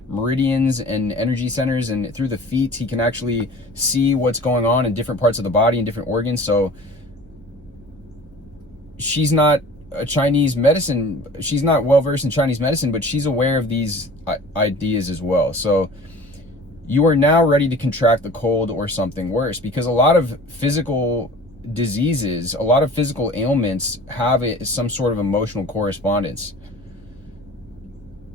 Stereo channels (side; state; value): right; noise; hum, 26 dB below the sound